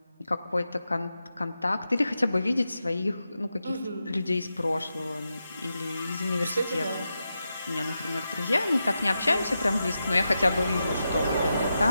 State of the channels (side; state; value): both; inverted; correlation -0.89